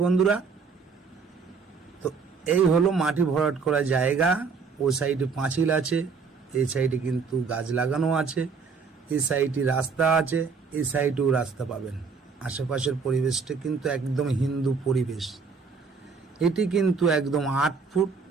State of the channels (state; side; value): quieter; left; 5.2 dB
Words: বন্ধুরা। তো এই হলো মাটি ভরাট করা জায়গা। ও সাইডে পাঁচিল আছে, এই সাইডে কিন্তু গাছ লাগানো আছে, এই সাইডে রাস্তা আছে, এই সাইডেও রাস্তা পাবেন। আশেপাশের পরিবেশটা কিন্তু একদম হিন্দু পরিবেশ। এটি কিন্তু একদম 8 ফুট